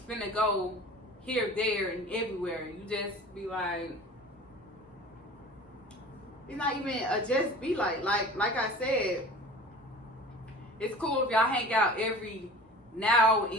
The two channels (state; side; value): normal; both; correlation 0.40